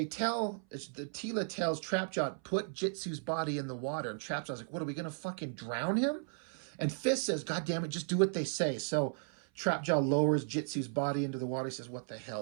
tells Trapjaw, put Jitsu's body in the water. And Trapjaw's like, what, are we going to fucking drown him? And Fist says, God damn it, just do what they say. So Trapjaw lowers Jitsu's body into the water. He says, what the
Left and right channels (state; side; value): silent; left; 54 dB below the other